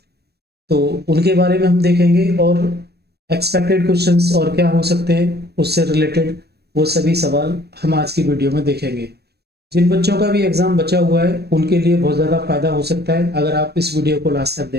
तो उनके बारे में हम देखेंगे और एक्सपेक्टेड क्वेश्चंस और क्या हो सकते हैं उससे रिलेटेड वो सभी सवाल हम आज की वीडियो में देखेंगे। जिन बच्चों का भी एग्जाम बचा हुआ है उनके लिए बहुत ज़्यादा फायदा हो सकता है अगर आप इस वीडियो को लास्ट तक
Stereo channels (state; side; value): late; left; 0.47 ms